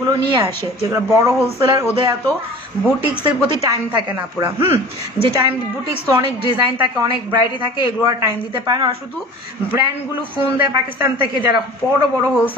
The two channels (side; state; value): both; normal; correlation 0.41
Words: নিয়ে আসে, যেগুলো বড় হোলসেলার ওদের এত বুটিক্সের প্রতি টাইম থাকে না পুরা। যে টাইম বুটিক্স তো অনেক ডিজাইন থাকে, অনেক ভ্যারাইটি থাকে, এগুলো আর টাইম দিতে পারে না। আর শুধু ব্র্যান্ডগুলো ফোন দেয় পাকিস্তান থেকে, যারা বড় বড়